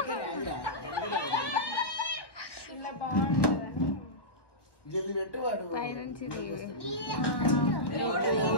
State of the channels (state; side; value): late; right; 1.1 ms